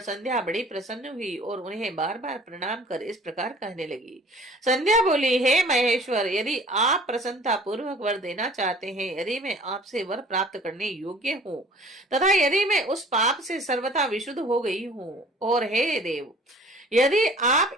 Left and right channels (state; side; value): normal; both; correlation 0.50